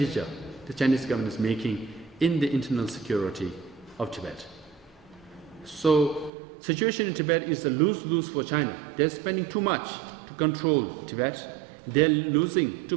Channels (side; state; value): left; drops out; at 6.3 s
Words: the Chinese government is making in the internal security of Tibet. So, situation in Tibet is a lose-lose for China. They're spending too much to control Tibet. They're losing